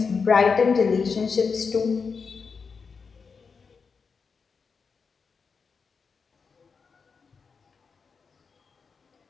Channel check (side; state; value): right; quieter; 5.3 dB